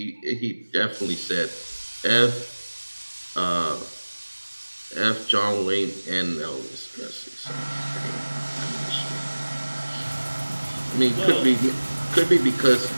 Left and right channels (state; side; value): inverted; both; correlation -1.00